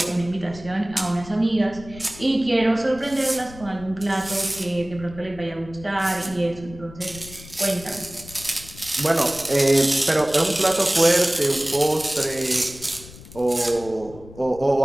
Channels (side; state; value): left; noise; rumble, 18 dB below the sound